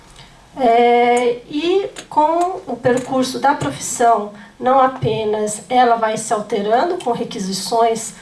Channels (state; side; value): identical; both; correlation 1.00